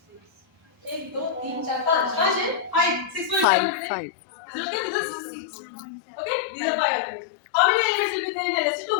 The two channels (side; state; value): right; drops out; at 3.5 s